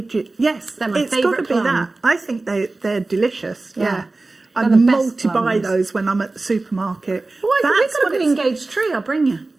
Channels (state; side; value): quieter; left; 3.3 dB